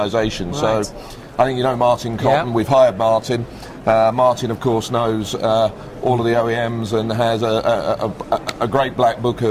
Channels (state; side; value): identical; both; correlation 1.00